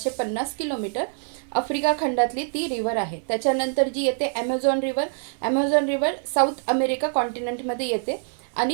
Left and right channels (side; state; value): left; silent; 62 dB below the other